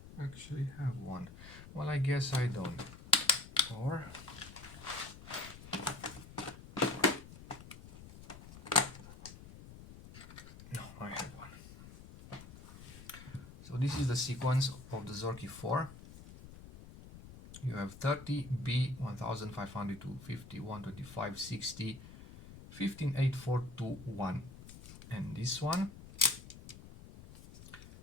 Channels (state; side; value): noise; left; rumble, 16 dB below the sound